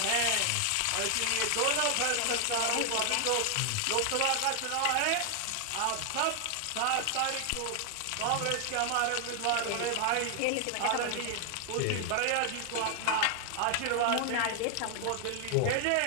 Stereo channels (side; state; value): both; different; correlation 0.00